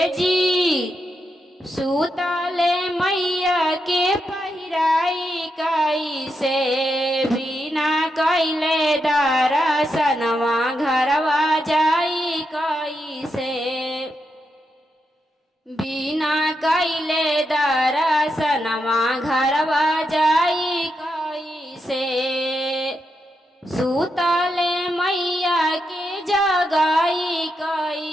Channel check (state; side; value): normal; both; correlation 0.84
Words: जी सूतले मैया के पहिराई कैसे बिना कैले दर्शनवा घरवा जाई कैसे बिना कैले दर्शनवा घरवा जाई कैसे सूतले मैया के जगाई